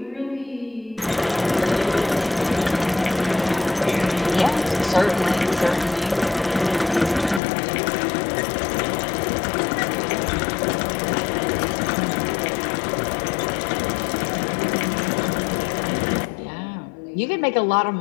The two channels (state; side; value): drops out; right; at 7.4 s